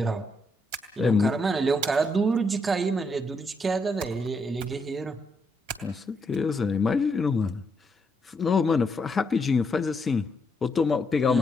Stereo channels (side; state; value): both; normal; correlation 0.78